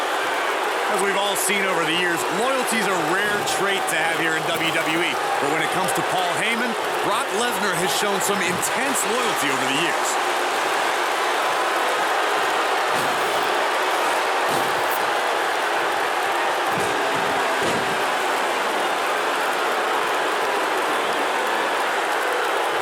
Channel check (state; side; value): identical; both; correlation 1.00